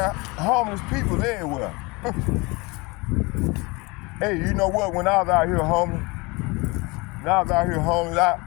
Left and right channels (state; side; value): quieter; right; 25.9 dB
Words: homeless people everywhere. Hey, you know what? When I was out here homeless,